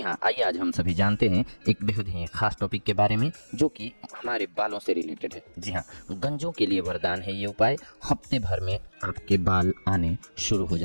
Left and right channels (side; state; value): both; inverted; correlation -1.00